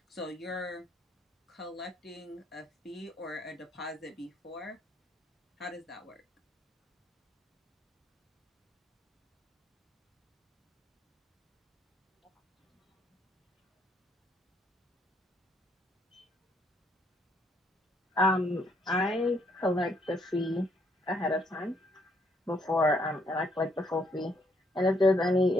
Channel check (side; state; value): both; normal; correlation 0.71